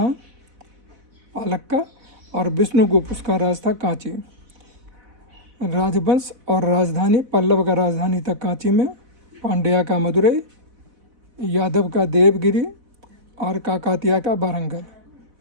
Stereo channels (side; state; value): left; late; 4.0 ms